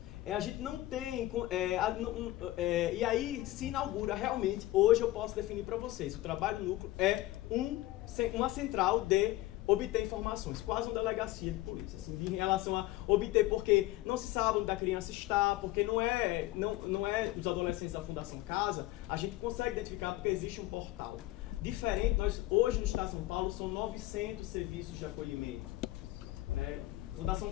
A gente não tem... e aí se inaugura realmente, hoje eu posso definir para vocês, o trabalho núcleo é uma central de obter informações, quase uma delegacia de polícia, assim, em relação a obter, porque não se sabe onde a criança está, porque não é os adolescentes da Fundação Casa, a gente consegue identificar porque existe um portal. Diferente, hoje no Estado de São Paulo são 900 serviços de acolhimento, né? Fundação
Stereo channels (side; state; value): right; quieter; 17.2 dB